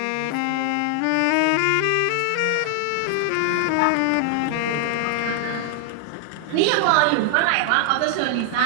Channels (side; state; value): both; different; correlation 0.00